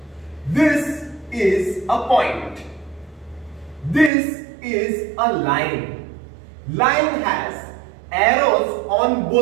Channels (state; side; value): drops out; left; at 4.1 s